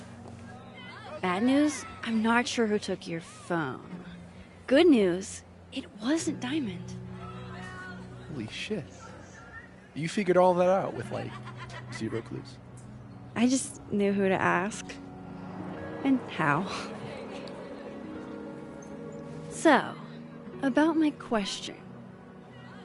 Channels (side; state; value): both; identical; correlation 1.00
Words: bad news, I'm not sure who took your phone. Good news, it wasn't Diamond. Holy shit. You figured all that out with, like, 0 clues. I just knew who to ask. And how. So, about my question.